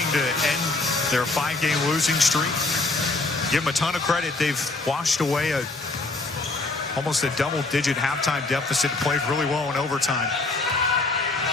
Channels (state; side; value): quieter; right; 3.3 dB